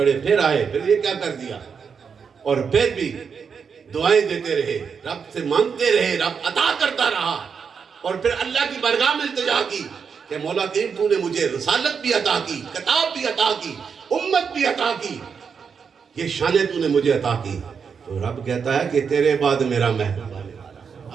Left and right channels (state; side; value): quieter; left; 6.3 dB